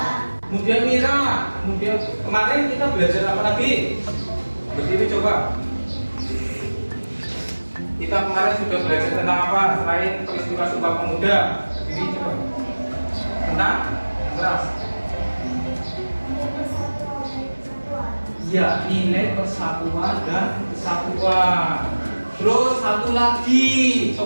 Kemudian Mira. Kemudian kemarin kita belajar apa lagi? Berdiri coba. Kita kemarin sudah belajar tentang apa selain peristiwa Sumpah Pemuda? Berdiri coba. Tentang keras. Ya, nilai persatuan dan kesatuan. Terus satu lagi,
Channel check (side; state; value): both; inverted; correlation -1.00